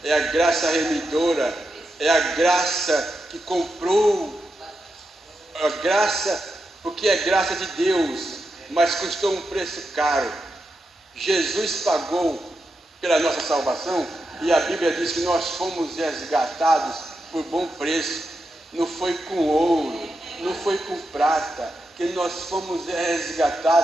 é a graça remidora, é a graça que comprou, a graça, porque é graça de Deus, mas custou um preço caro. Jesus pagou pela nossa salvação, e a Bíblia diz que nós fomos resgatados por bom preço. Não foi com ouro, não foi com prata, que nós fomos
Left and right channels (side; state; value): both; normal; correlation 0.87